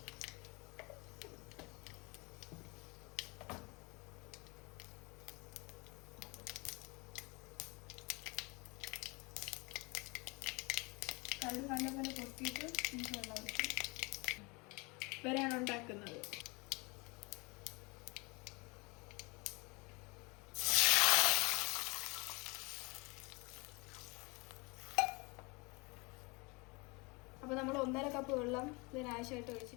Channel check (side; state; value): right; quieter; 27.8 dB